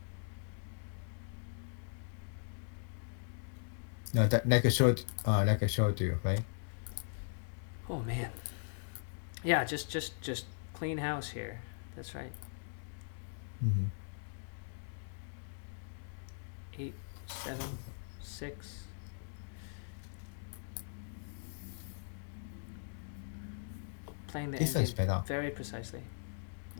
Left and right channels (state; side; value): silent; right; digital silence